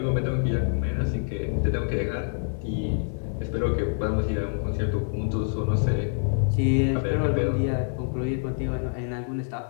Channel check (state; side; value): silent; right; 61 dB below the other